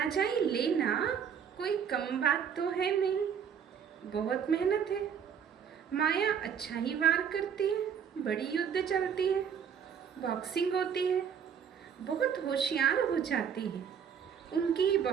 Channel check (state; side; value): quieter; left; 7.6 dB